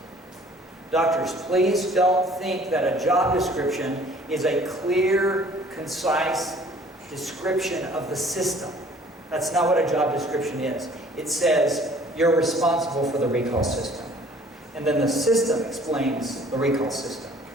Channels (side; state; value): both; normal; correlation 0.53